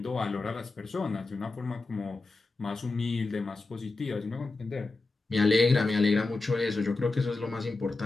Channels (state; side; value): quieter; right; 3.4 dB